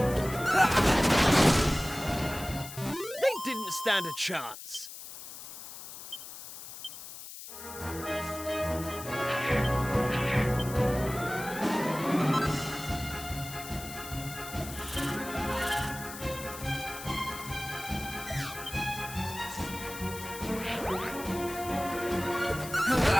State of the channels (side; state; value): left; noise; hiss, 12 dB below the sound